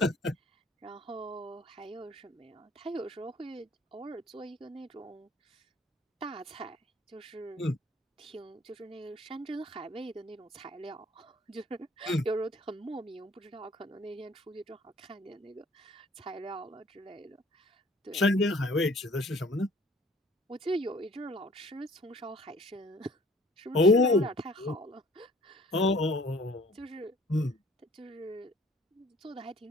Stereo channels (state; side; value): normal; both; correlation 0.54